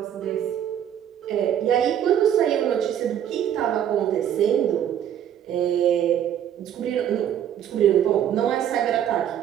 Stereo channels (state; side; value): quieter; left; 10.0 dB